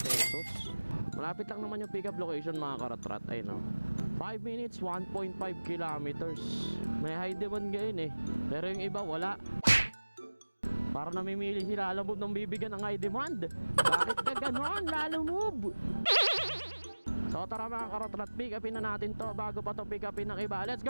Malapit lang naman yung pick up location mga karatrat. Ay no, 5 minutes, 1.5 kilometers. May high demand ngayon eh, pero yung iba wala. Para namimili sila Lalamove ng bibigyan ng high demand. Bakit ka ganon, Lalamove? So tara mga karatrat, pick upin na natin to bago pa to pick upin ng iba. Let's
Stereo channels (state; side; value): inverted; both; correlation -1.00